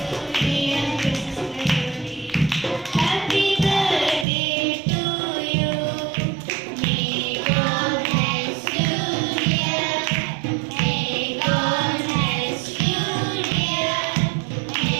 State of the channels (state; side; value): drops out; left; at 4.2 s